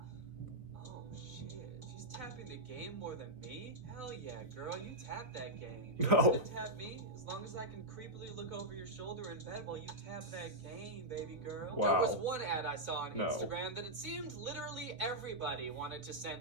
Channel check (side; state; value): left; late; 3.9 ms